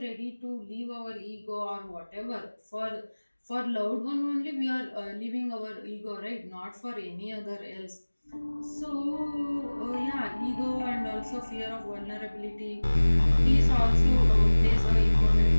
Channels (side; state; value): both; inverted; correlation -1.00